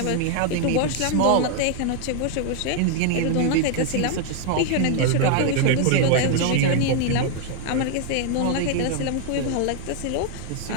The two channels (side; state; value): both; different; correlation 0.00